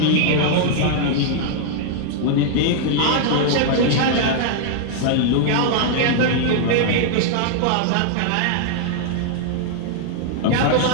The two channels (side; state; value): both; different; correlation -0.01